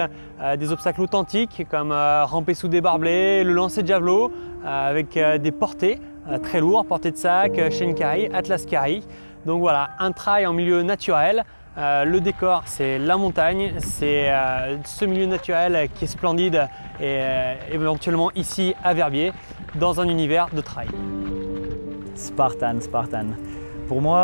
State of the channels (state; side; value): inverted; both; correlation -1.00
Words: authentiques comme ramper sous des barbelés, le lancer de javelot avec des portées très lourds, portées de sac, Shane Carey, Atlas Carey. Donc voilà, un trail en milieu naturel. Le décor, c'est la montagne, c'est ce milieu naturel qui est splendide et éventuellement ici à Verbier, dans un univers de trail. Spartan. Pour